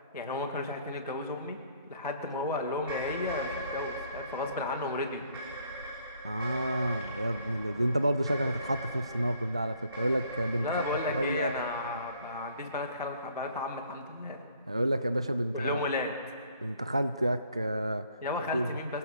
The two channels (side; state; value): both; inverted; correlation -0.63